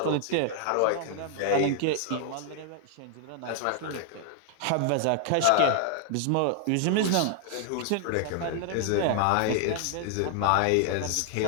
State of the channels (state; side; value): different; both; correlation 0.00